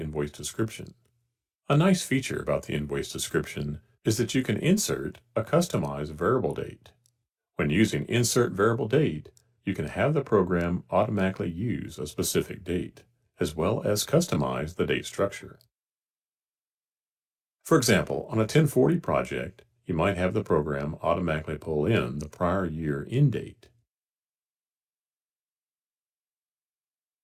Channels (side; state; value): both; identical; correlation 1.00